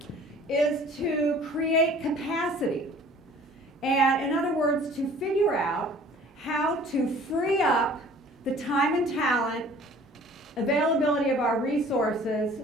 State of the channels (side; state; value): both; normal; correlation 0.50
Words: is to create capacity. And in other words, to figure out how to free up the time and talent, availability of our resources